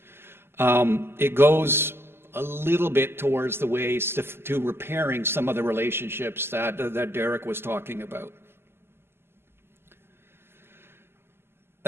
It goes a little bit towards the ways to repairing some of the relationships that Derek was talking about.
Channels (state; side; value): late; left; 0.12 ms